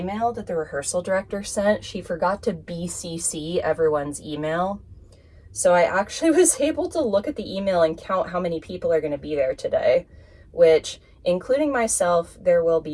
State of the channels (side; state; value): both; identical; correlation 1.00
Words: that the rehearsal director sent, she forgot to BCC everyone's email. So I actually was able to look at the email and count how many people are going to be there today, which, including myself, there will